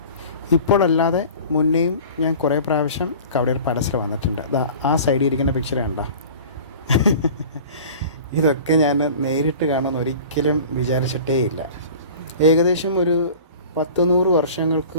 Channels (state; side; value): inverted; both; correlation -0.41